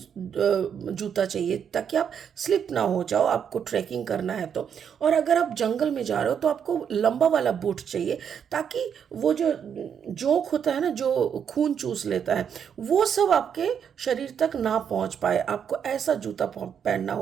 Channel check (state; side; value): quieter; left; 7.8 dB